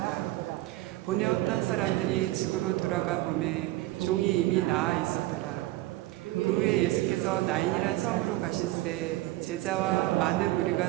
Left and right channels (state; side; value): quieter; left; 17.5 dB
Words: 보내었던 사람들이 집으로 돌아가 보매 종이 이미 나아 있었더라. 그 후에 예수께서 나인이란 성으로 가실새 제자와 많은